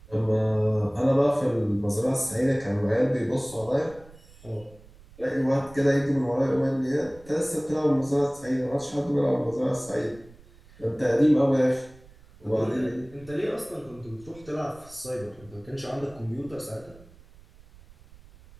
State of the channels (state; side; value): noise; right; rumble, 23 dB below the sound